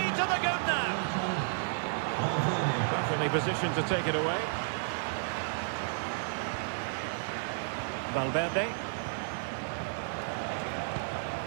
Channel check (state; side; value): silent; left; 56 dB below the other